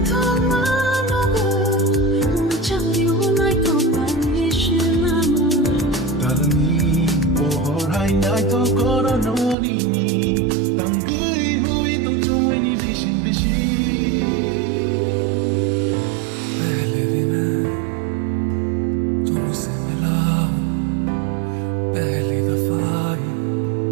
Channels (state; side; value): drops out; left; at 9.6 s